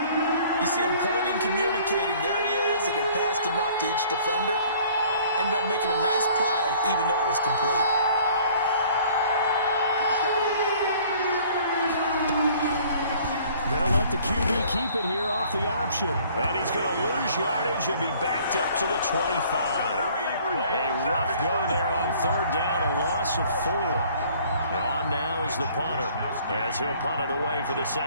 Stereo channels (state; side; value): inverted; both; correlation -0.55